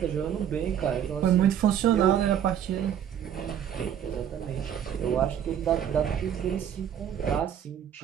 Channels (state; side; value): quieter; left; 9.5 dB